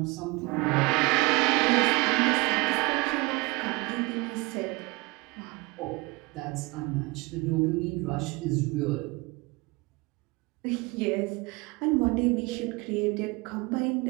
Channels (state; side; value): quieter; left; 25.1 dB